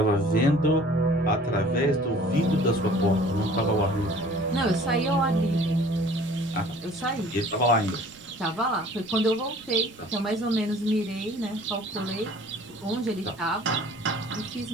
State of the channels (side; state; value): right; noise; rumble, 27 dB below the sound